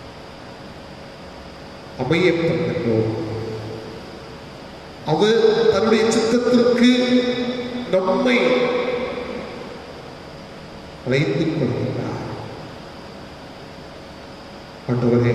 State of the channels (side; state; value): both; identical; correlation 1.00